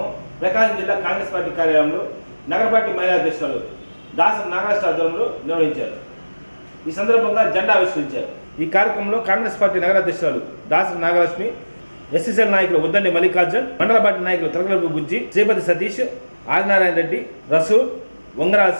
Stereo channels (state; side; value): inverted; both; correlation -1.00